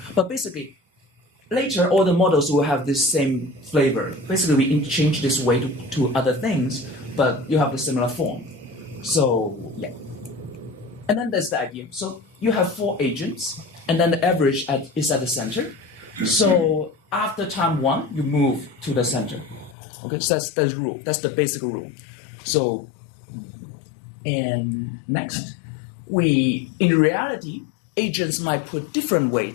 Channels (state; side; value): drops out; right; at 19.8 s